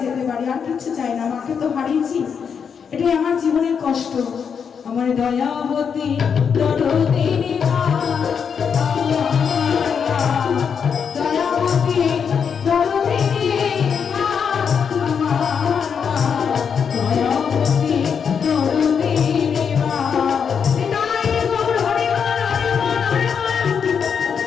যেতে পারি। আর কিছু চাই না, মাকে তো হারিয়েছি, এটাই আমার জীবনের কষ্ট। আমার দয়াবতী দরদিনী মা, দয়াবতী দরদিনী মা, আমার মা, দয়াবতী দরদিনী মা। নিতাই গৌর হরি বল, হরি বল, হরি বল।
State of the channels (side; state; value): right; quieter; 6.8 dB